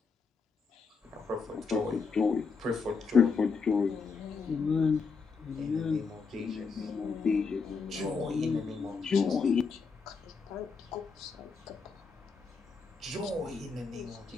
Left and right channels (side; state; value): right; quieter; 5.0 dB